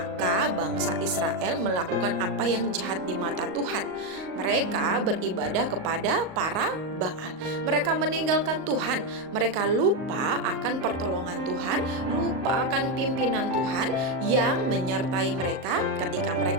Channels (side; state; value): left; late; 38 ms